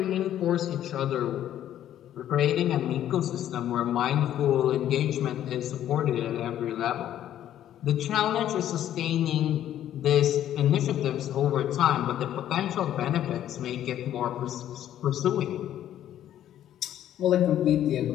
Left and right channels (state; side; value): quieter; right; 11.5 dB